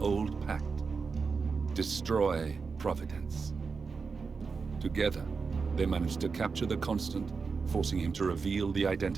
old pact. Destroy Providence. Together, they manage to capture the Constant, forcing him to reveal the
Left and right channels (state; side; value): quieter; left; 4.9 dB